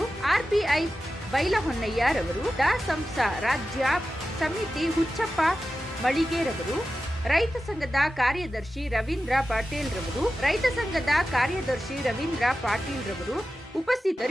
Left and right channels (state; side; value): normal; both; correlation 0.93